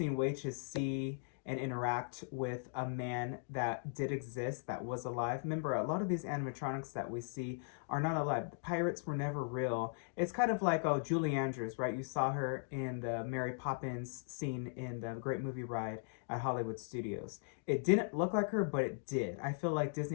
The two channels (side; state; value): right; silent; digital silence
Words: way to see and interact with a man that did exist, that was alive. Remember, a lot of these animatronics that we see are not alive. The pirates were never real. It's kind of like, Julie Andrews, right? You saw her in the Mary Poppins scene in the Great Movie Ride at Hollywood Studios. It didn't look like her, but it did. I feel like